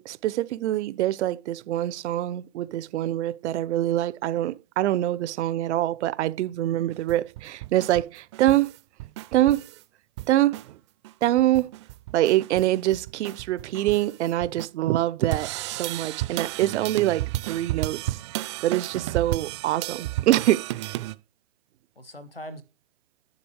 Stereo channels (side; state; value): left; quieter; 14.1 dB